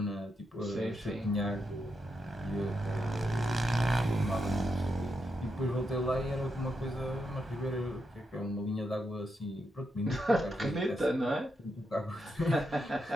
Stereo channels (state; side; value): normal; both; correlation 0.84